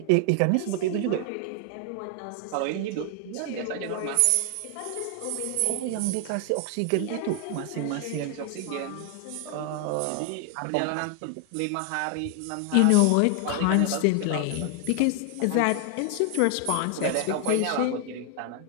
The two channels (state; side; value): different; both; correlation 0.00